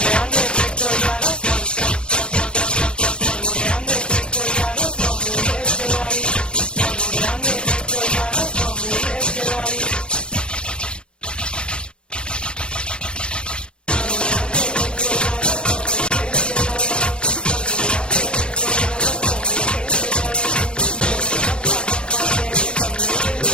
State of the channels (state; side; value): late; right; 0.053 ms